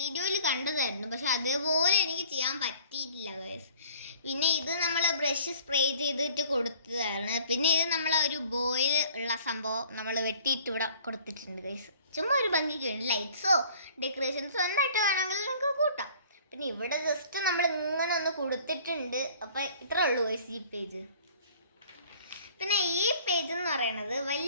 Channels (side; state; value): both; inverted; correlation -0.53